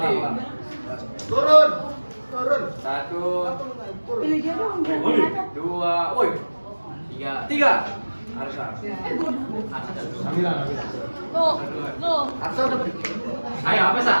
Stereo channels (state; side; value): inverted; both; correlation -1.00